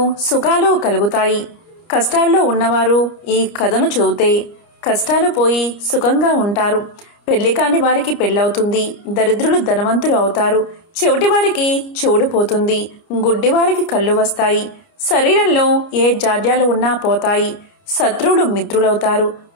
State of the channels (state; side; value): late; right; 30 ms